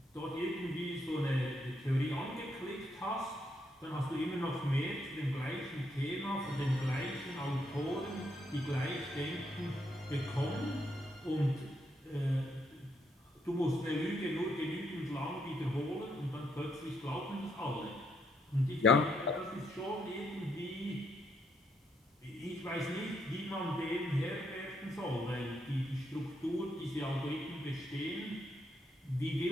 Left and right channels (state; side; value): normal; both; correlation 0.76